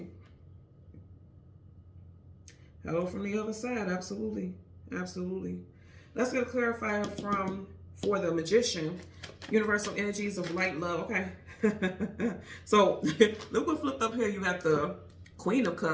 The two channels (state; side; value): identical; both; correlation 1.00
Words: Hello from the other side. Absolutely. Absolutely. Let's get a clarifier for the Magician. Universal energies of light, love. Okay. So look what flipped up here. You got the Queen of